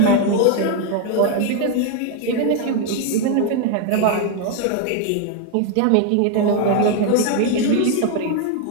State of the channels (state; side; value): different; both; correlation 0.01